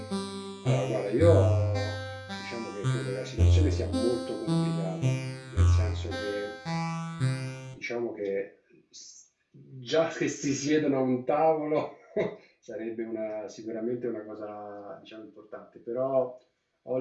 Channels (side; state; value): both; identical; correlation 1.00